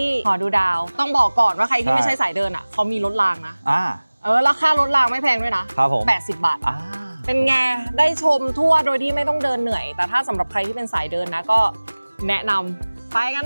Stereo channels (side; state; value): both; inverted; correlation -1.00